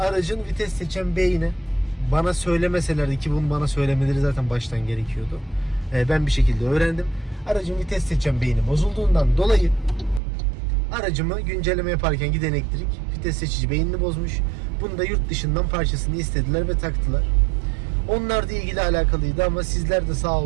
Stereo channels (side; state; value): left; drops out; at 10.2 s